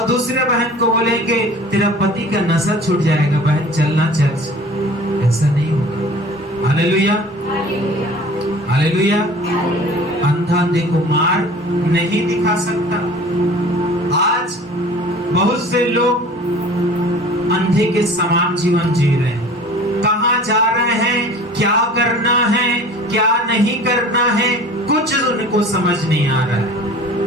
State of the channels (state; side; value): normal; both; correlation 0.44